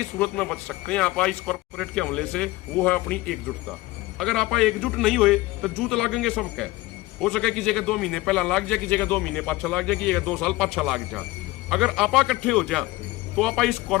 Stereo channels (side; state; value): right; quieter; 19.5 dB